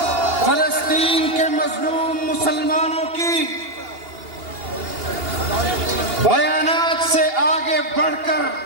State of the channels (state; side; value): late; left; 2.8 ms